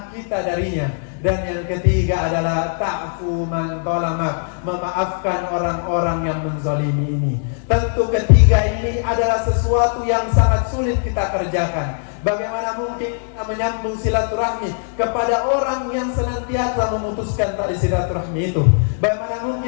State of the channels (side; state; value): right; silent; digital silence